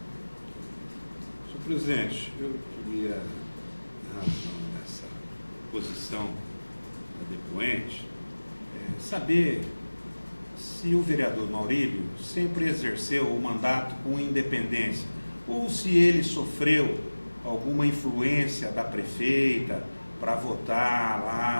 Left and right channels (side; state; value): both; inverted; correlation -1.00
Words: Senhor presidente, eu queria, na razão dessa posição da depoente, saber se o vereador Maurílio sempre exerceu o mandato com independência ou se ele sofreu alguma influência da prefeita para votar